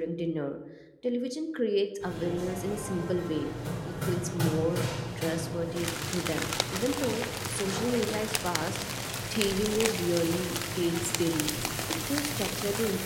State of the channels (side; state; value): both; identical; correlation 1.00